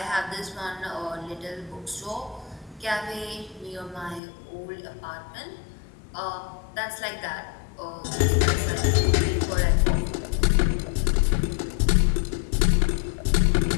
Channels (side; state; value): right; drops out; at 4.2 s